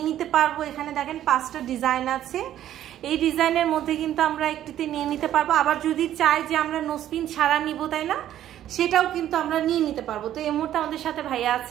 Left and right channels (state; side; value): quieter; left; 11.8 dB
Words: নিতে পারবো। এখানে দেখেন 5টা ডিজাইন আছে, এই ডিজাইনের মধ্যে কিন্তু আমরা একটিতে নিয়ে নিতে পারবো। আবার যদি চাই যে আমরা নো স্ক্রিন ছাড়া নিব, তাই না, সেটাও কিন্তু আমরা নিয়ে নিতে পারবো। তো এই মুহূর্তে আমাদের সাথে ভাইয়া